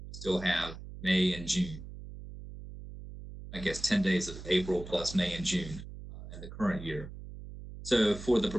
still have May and June. I guess 10 days of April plus May and June in the current year. So for the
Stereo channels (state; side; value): noise; right; hum, 12 dB below the sound